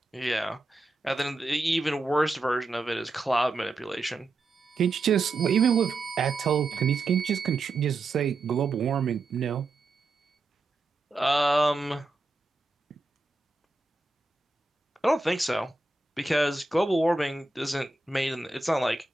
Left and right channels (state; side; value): quieter; left; 3.2 dB